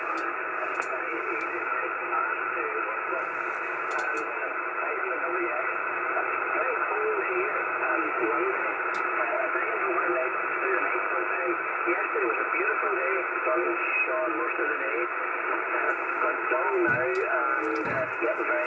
Yesterday was a beautiful day, sun shone most of the day, got dull now and getting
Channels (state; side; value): identical; both; correlation 1.00